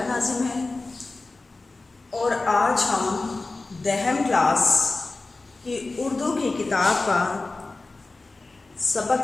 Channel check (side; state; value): right; quieter; 3.4 dB